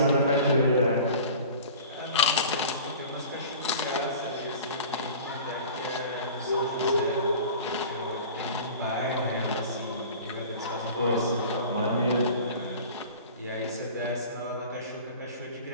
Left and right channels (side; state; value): both; inverted; correlation -0.40